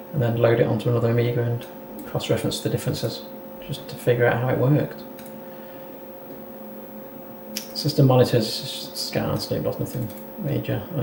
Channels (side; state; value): both; identical; correlation 1.00